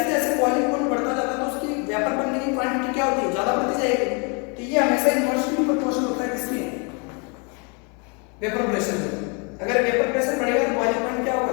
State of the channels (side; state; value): right; quieter; 34.0 dB